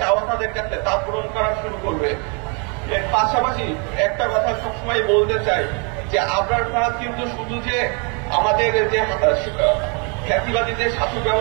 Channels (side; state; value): left; quieter; 35.3 dB